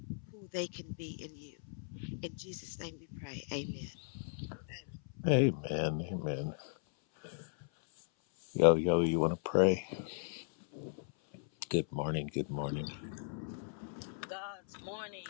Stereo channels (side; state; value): right; silent; 53 dB below the other